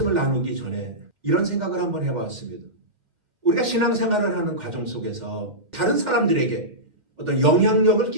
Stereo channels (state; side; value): late; left; 2.1 ms